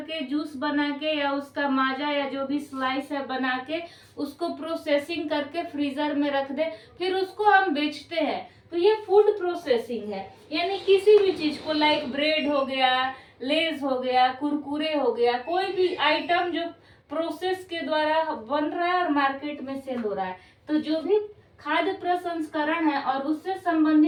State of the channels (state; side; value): identical; both; correlation 1.00